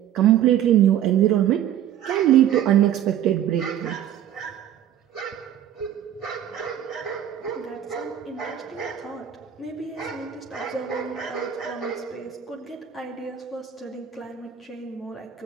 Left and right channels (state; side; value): quieter; left; 10.5 dB